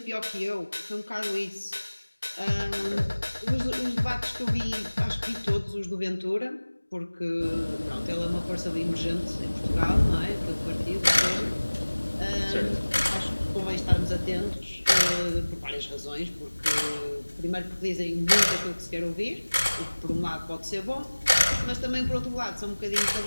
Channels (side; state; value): both; inverted; correlation -1.00